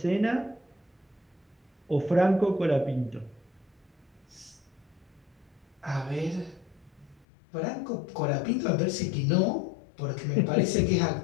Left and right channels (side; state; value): right; drops out; at 7.2 s